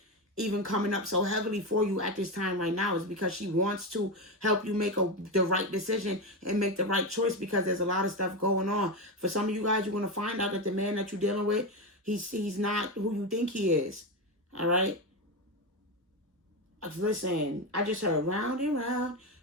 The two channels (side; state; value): both; normal; correlation 0.14